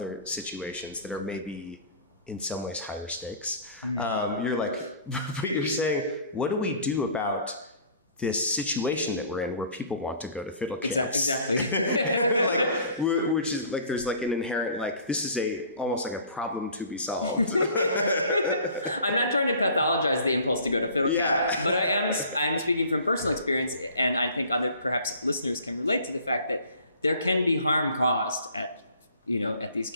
situations that are maybe in some ways higher stakes. You're like, you're saying, what do we do about this situation that we're in where people want to go to fiddle camps? Exactly. Which is like, there's like an inherent, like, this is almost like a problem to be solved. I'm not trying to pathologize the impulse to go to fiddle camp, but I am speaking from personal experience, and I think other perhaps listeners can relate to the fact that there can be harm caused at these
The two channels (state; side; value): inverted; both; correlation -0.48